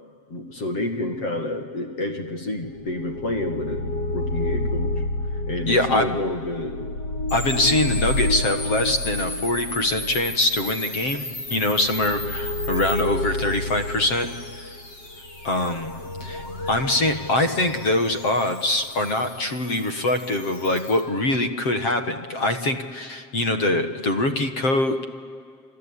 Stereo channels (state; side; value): late; right; 7.6 ms